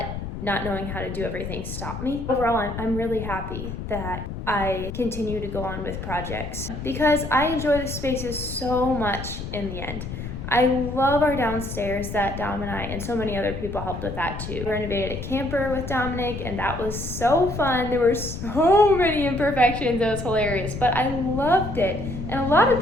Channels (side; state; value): left; noise; rumble, 7 dB below the sound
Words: not knowing how to do everything stop me. Overall, I'm really happy that I continue to go on with projects because I enjoy the spaces so much in the end. I love our downstairs that Dom and I and so many other people helped with that too. We renovated a camper with Dominic and that was so fun. There were so many imperfections, it was hilarious, but I loved it. And a lot